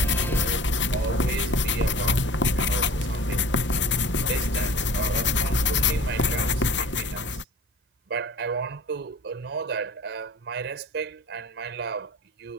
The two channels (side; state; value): both; normal; correlation 0.42